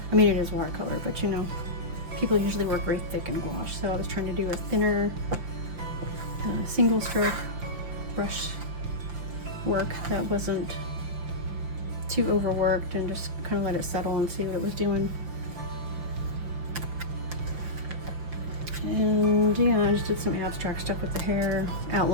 I mean, it is watercolor, but you know, people usually work very thick in gouache, so I was trying to do a thinner single stroke brush work that wasn't too overworked, and just kind of let it settle and see what it was doing. And yeah, I just did some abstract stuff with the hair,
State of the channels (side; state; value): left; late; 5.8 ms